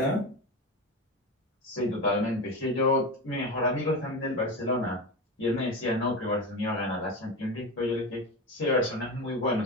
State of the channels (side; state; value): both; normal; correlation 0.22